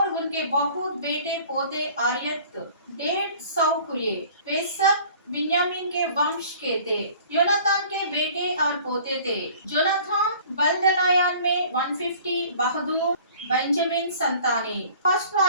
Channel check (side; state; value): both; inverted; correlation -0.49